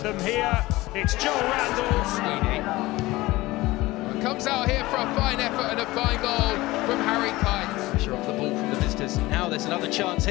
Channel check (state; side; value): quieter; right; 19.3 dB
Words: them here. It's Joel Randall. Comes out here for a fine effort and a fine goal from Harry Kite. Pressure off the ball from the visitors. Now there's another chance